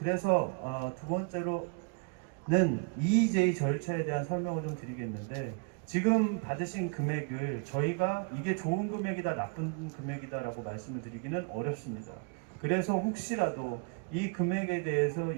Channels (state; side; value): quieter; left; 35.0 dB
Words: 두 번째로는 EEJ 절차에 대한 설명을 좀 드리겠는데 지금 받으신 금액을 저희가 이게 좋은 금액이다 나쁜 금액이다라고 말씀을 드리기는 어렵습니다. 그래서 혹시라도 이 금액에 대해서